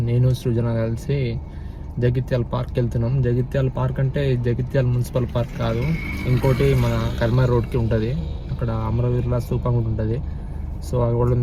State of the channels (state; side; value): identical; both; correlation 1.00